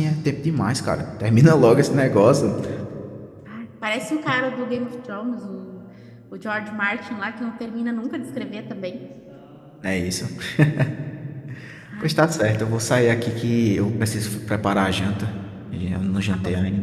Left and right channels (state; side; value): identical; both; correlation 1.00